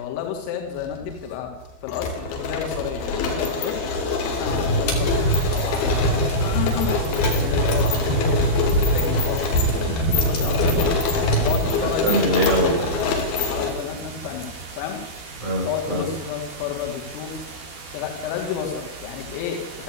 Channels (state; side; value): late; right; 12 ms